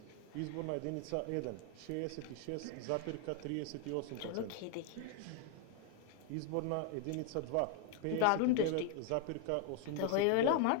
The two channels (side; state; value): both; different; correlation 0.00